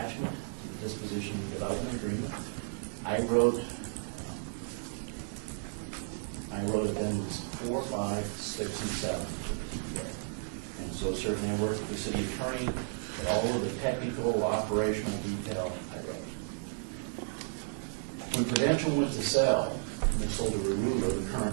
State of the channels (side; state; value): left; silent; 56 dB below the other